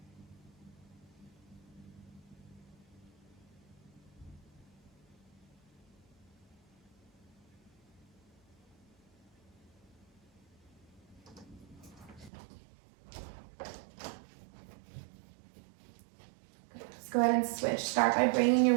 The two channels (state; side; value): drops out; left; at 12.3 s